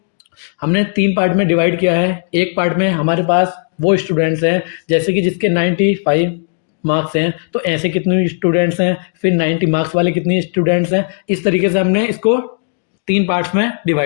हमने 3 पार्ट में डिवाइड किया है। एक पार्ट में हमारे पास वो स्टूडेंट्स हैं जैसे कि जिसके 95 मार्क्स हैं, तो ऐसे कितने स्टूडेंट्स हैं, फिर 90 मार्क्स वाले कितने स्टूडेंट्स हैं। इस तरीके से हमने इसको 3 पार्ट्स में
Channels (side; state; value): right; silent; digital silence